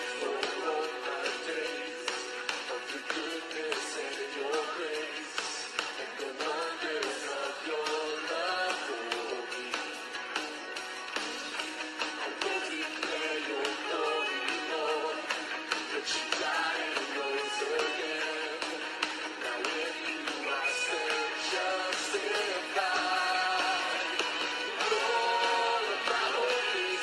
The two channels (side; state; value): both; identical; correlation 1.00